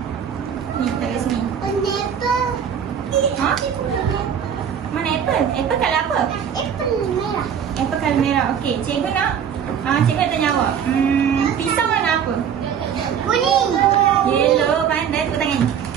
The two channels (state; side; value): quieter; left; 8.1 dB